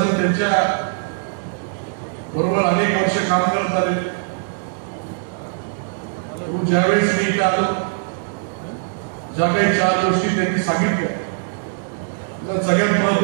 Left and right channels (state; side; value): silent; left; digital silence